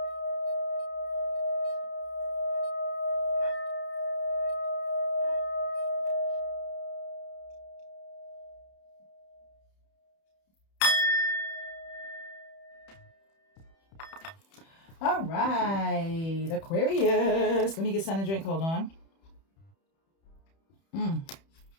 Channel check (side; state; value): right; late; 31 ms